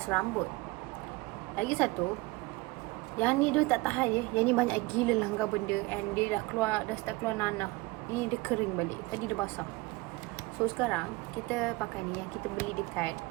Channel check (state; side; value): quieter; left; 22.4 dB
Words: rambut. Lagi satu, yang ni dia tak tahan je. Yang ni banyak gila langgar benda and dia dah start keluar nanah. Ni dia kering balik. Tadi dia basah. So sekarang kita pakai ni yang kita beli dekat